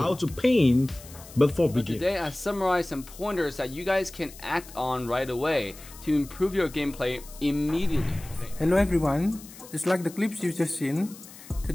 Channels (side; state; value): left; noise; hiss, 18 dB below the sound